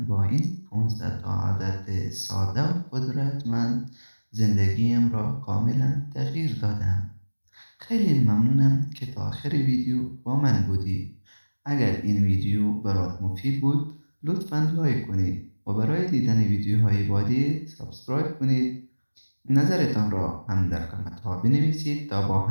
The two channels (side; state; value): both; inverted; correlation -1.00